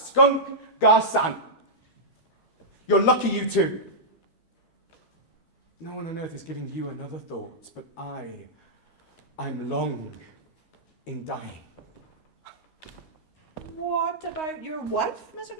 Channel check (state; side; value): late; right; 12 ms